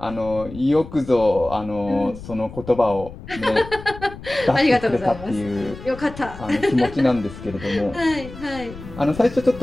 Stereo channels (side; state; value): left; noise; rumble, 14 dB below the sound